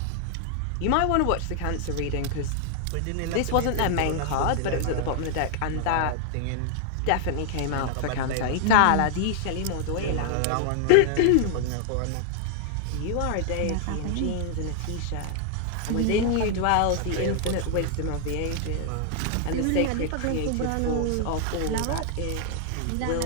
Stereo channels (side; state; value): both; different; correlation 0.00